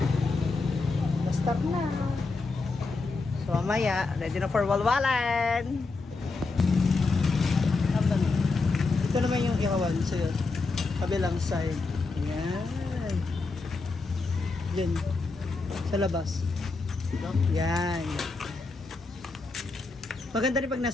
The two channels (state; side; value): quieter; right; 3.8 dB